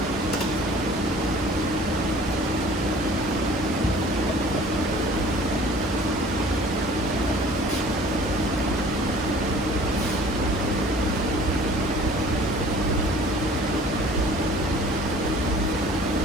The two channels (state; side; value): normal; both; correlation 0.49